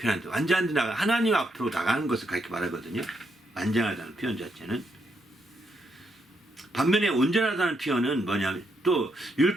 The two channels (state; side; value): normal; both; correlation 0.78